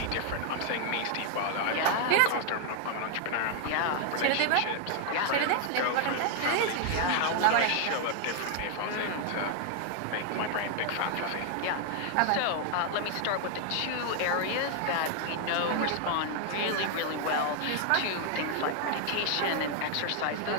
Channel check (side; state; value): both; different; correlation 0.00